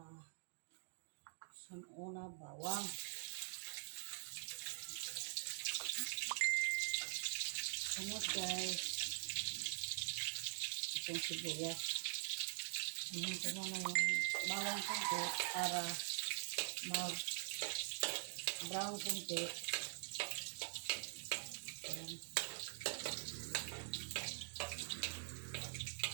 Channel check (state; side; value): silent; left; digital silence